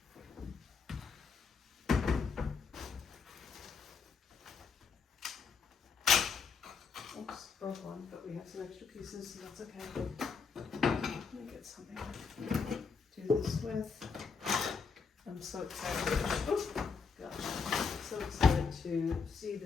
Oops, broke one, but we have some extra pieces, so that's okay. Let me get something to do this with. I'm so excited. Oh, gosh. I'm so excited to see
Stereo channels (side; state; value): right; quieter; 5.4 dB